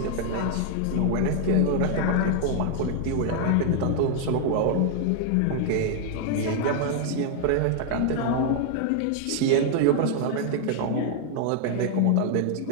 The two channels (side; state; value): both; different; correlation 0.00